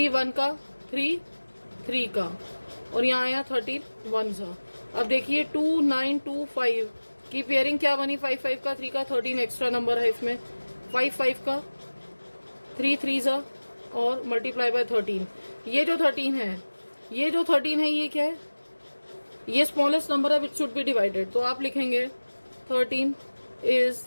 1 का 3 3 का और यहाँ आया 31 सा. अब देखिए 2925 की पेयरिंग क्या बनी, 5 5 का 3 का 13 एक्स्ट्रा नंबर है इसमें. 5 5 का 3 3 सा और मल्टीप्लाई बाय 13. ये जो 13 है, ये क्या है, ये स्मॉलेस्ट नंबर है विच शुड बी डिवाइडेड. तो आप लिखेंगे 13 is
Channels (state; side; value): inverted; both; correlation -1.00